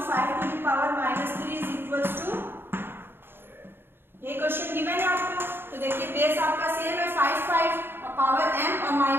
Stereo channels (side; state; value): left; late; 0.10 ms